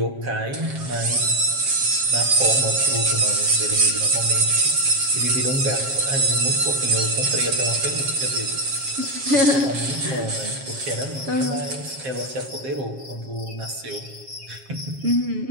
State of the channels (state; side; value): late; left; 7.4 ms